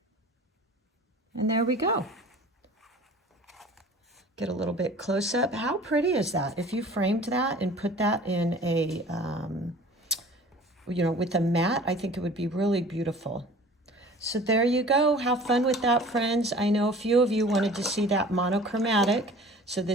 And there we go. Get a little bit close up. How pretty is that? If you framed that and put that in a, with a mat, I think it would be really beautiful. So there you go. Have fun with that, friends. I know a few of you wanted to see that monochromatic. So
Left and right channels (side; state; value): both; normal; correlation 0.45